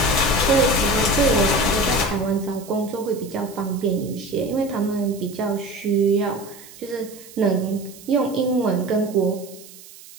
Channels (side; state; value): right; noise; hiss, 19 dB below the sound